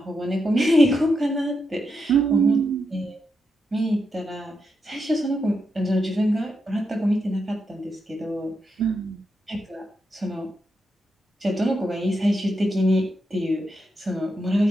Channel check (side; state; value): both; normal; correlation 0.84